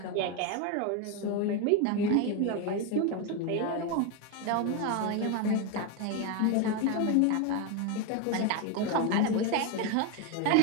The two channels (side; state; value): both; different; correlation 0.02